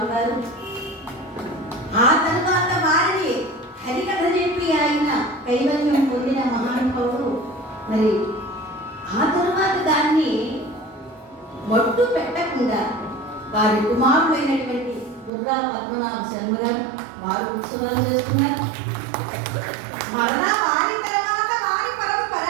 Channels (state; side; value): drops out; left; at 15.3 s